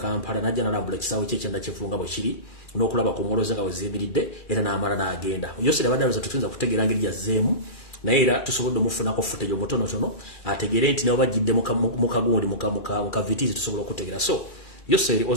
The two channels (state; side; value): late; right; 2.4 ms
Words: n'ajja n'alambula ekisaawe kye kyenda kivunga bwe kiri n'okulaba ku muloze nga weziyimiridde era n'amala n'agenda Yoseri abadde alowooza tutuyinza kutegeera ngeri yazzeemu naye era tusobodde omufunako footage omutonotono ategeere nti nabo bajjidde mu kagundi mu kavitiizi tusobola okutegeera so Yoseri